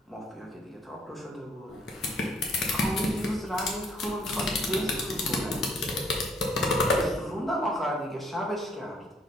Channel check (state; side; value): normal; both; correlation 0.65